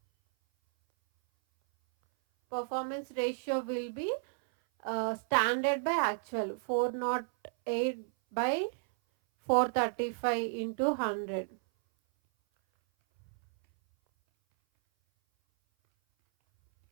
Performance ratio will be standard by actual, 408 by 435 into 100.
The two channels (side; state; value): left; silent; 56 dB below the other